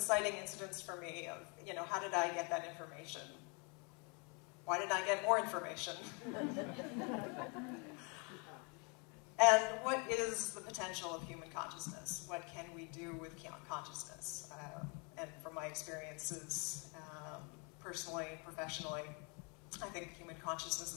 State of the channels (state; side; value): quieter; right; 33.6 dB